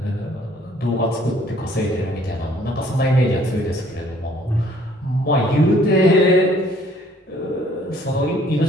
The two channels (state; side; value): normal; both; correlation 0.59